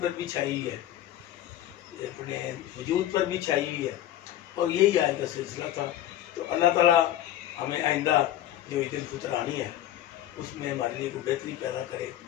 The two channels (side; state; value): right; quieter; 12.7 dB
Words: भी छाई हुई है, अपने वजूद पर भी छाई हुई है और यही आज का सिलसिला था। तो अल्लाह ताला हमें आइंदा जो ईद उल फितर आनी है उसमें हमारे लिए कोई बेहतरी पैदा करे।